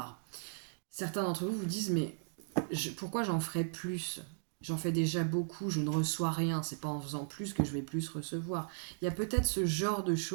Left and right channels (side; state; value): left; silent; digital silence